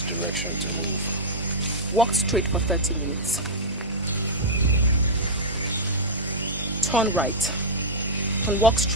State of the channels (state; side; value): normal; both; correlation -0.08